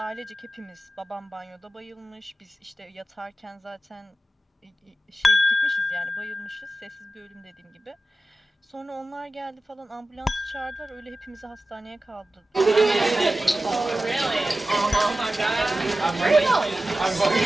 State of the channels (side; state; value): both; normal; correlation 0.94